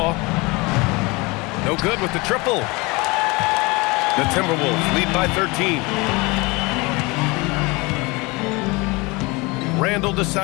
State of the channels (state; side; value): quieter; right; 25.4 dB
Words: No good with the triple. The Timberwolves lead by 13. Randall